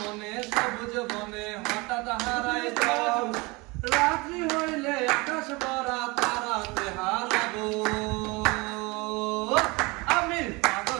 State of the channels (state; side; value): quieter; left; 25.5 dB